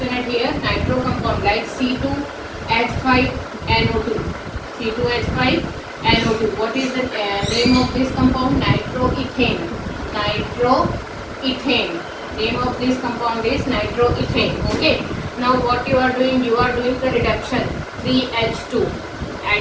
at here. Nitro compound like C2H5NO2. C2H5NO2. What is the name of this compound? Nitroethane. Nitroethane. Name of this compound is nitroethane. Okay. Now what you are doing? You are doing the reduction 3H2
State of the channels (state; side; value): identical; both; correlation 1.00